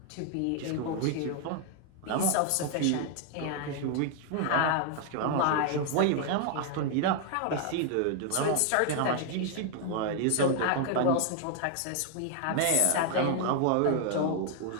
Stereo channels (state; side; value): different; both; correlation 0.00